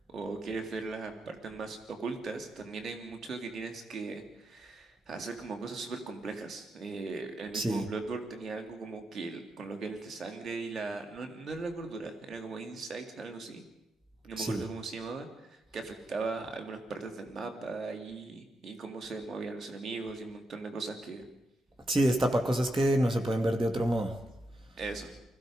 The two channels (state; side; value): normal; both; correlation 0.84